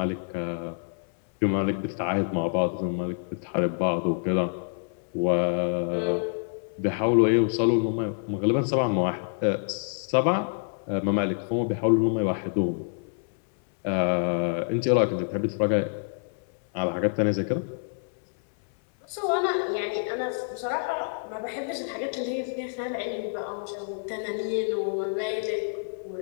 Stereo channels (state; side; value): silent; right; 60 dB below the other